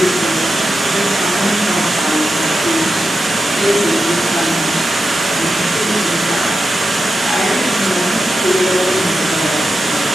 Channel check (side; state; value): both; normal; correlation 0.89